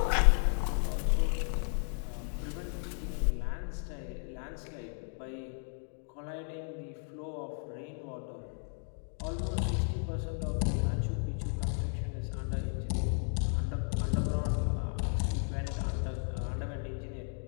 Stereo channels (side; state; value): right; silent; 55 dB below the other